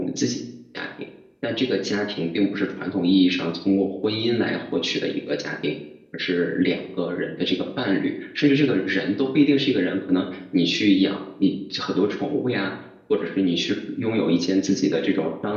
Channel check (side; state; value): both; identical; correlation 1.00